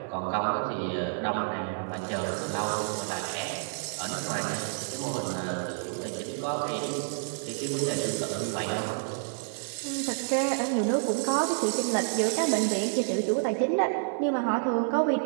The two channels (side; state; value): left; silent; digital silence